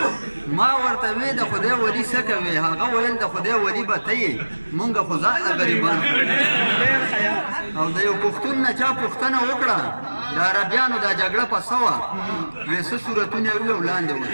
ما ورته وی د خدای ولی څه کوې هغه ویل د خدای ولی به ته یې مونږ خو ځان غریبان او د یو پښتون نه چا پوښتنه وکړه د عربیانو دا جګړه په څه وه وی څه صورتونه یې وویل وړاندې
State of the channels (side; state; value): both; inverted; correlation -1.00